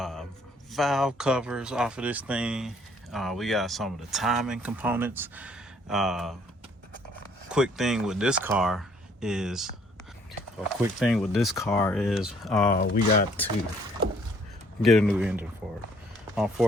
valve covers off of this thing. We got some of the timing components. Quick thing with this car is we got to get a new engine for it.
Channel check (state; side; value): normal; both; correlation 0.62